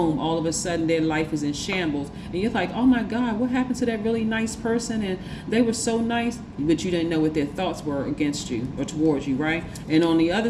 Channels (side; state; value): both; identical; correlation 1.00